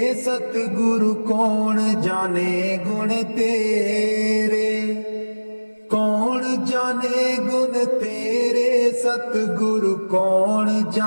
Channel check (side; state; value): both; inverted; correlation -1.00